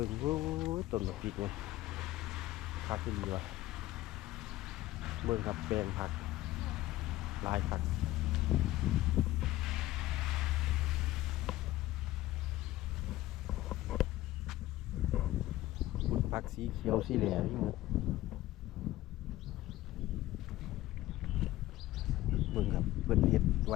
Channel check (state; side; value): quieter; right; 16.1 dB